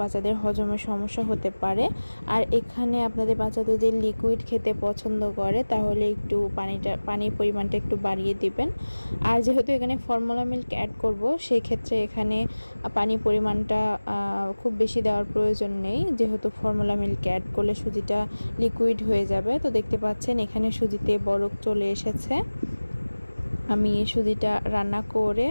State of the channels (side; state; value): both; inverted; correlation -1.00